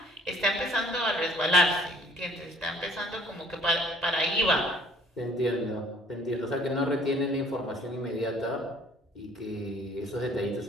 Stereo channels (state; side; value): normal; both; correlation 0.56